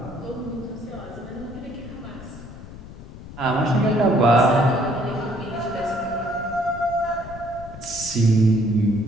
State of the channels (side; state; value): left; noise; rumble, 14 dB below the sound